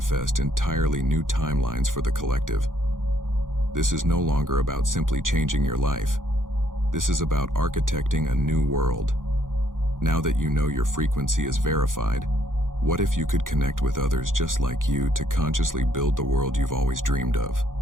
entirely new timelines for the collective. This is no longer about simply changing your life. This is about architecting a new world. Now that you know your frequency is verified, what if you could connect with others just like you to consciously build the world you've always dreamed of?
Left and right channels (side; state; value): left; late; 0.89 ms